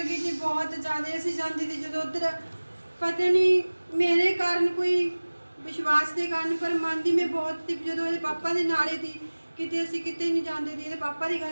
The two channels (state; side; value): inverted; both; correlation -1.00